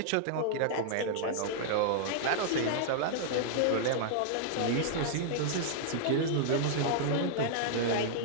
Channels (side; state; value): both; different; correlation -0.01